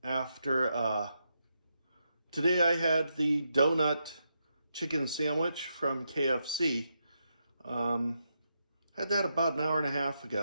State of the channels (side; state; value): both; inverted; correlation -0.83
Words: after today I had the donut chicken sandwich from KFC. Had that about an hour and a half